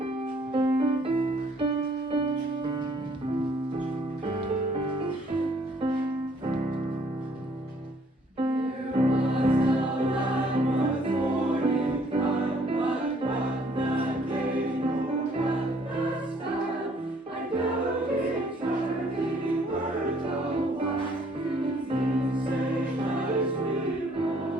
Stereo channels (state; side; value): normal; both; correlation 0.62